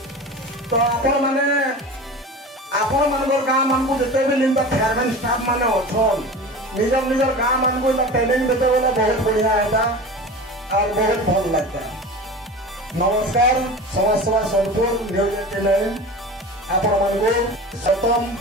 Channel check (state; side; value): normal; both; correlation 0.33